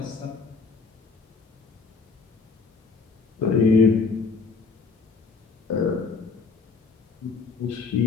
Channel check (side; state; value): right; quieter; 4.6 dB